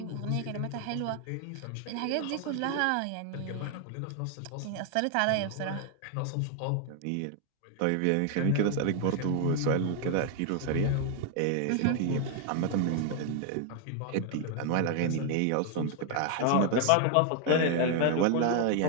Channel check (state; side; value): different; both; correlation 0.00